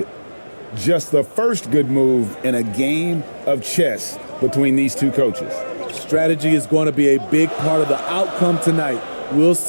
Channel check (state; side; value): inverted; both; correlation -1.00